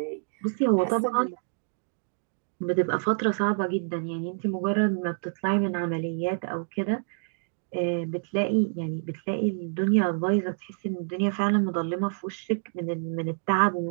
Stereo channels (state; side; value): silent; left; digital silence